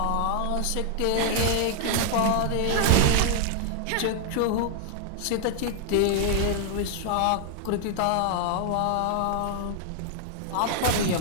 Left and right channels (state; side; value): different; both; correlation 0.00